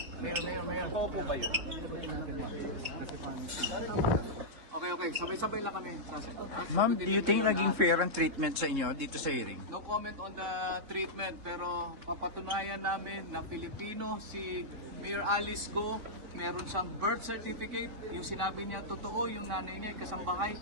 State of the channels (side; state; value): left; late; 3.7 ms